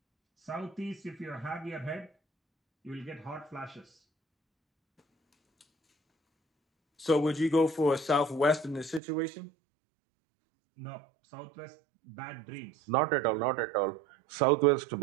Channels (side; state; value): left; drops out; at 9.0 s